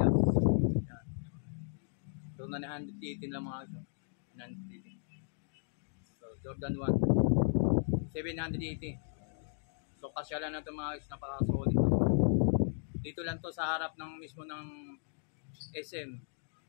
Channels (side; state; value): right; silent; digital silence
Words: Ayan. So 918 lang mga guys, 918. So Jordan 1 780. So kasyalan na ito mga guys, napaka solid na to. Dito lang to sa harap ng mismo ng SM